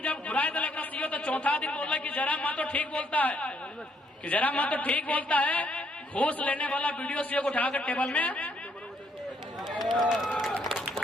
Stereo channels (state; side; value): normal; both; correlation 0.71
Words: जब घुराए तो सीओ, तो चौथा दिन बोल कि जयराम महतो ठीक बोलता है, कि जयराम महतो ठीक बोलता है। घूस लेने वाला वीडियो सीओ को उठाकर टेबल में